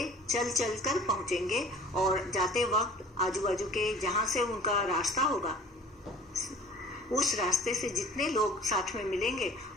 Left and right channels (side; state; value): both; normal; correlation 0.46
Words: चल चल कर पहुंचेंगे और जाते वक्त आजू बाजू के जहां से उनका रास्ता होगा उस रास्ते से जितने लोग साथ में मिलेंगे